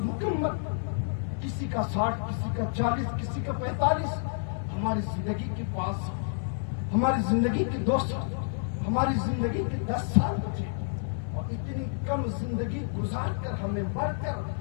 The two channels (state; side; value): silent; right; digital silence